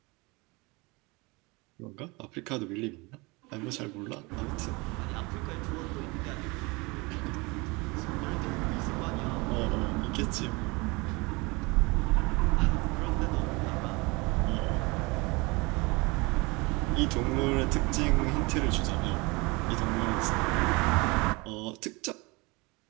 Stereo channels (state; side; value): quieter; left; 25.9 dB